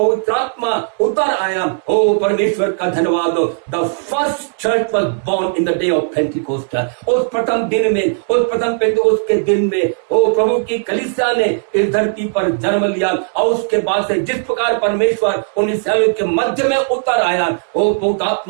आत्मा उतर आया, ओ परमेश्वर का धन्यवाद हो, the first church was born in the day of Pentecost. उस प्रथम दिन में, उस प्रथम पेंतिकोस्त के दिन में, ओ प्रभु की कलीसिया ने इस धरती पर जन्म लिया। और उसके बाद से जिस प्रकार परमेश्वर उन इस्राएलियों के मध्य में उतर आया, ओ पवित्र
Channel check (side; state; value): left; silent; 69 dB below the other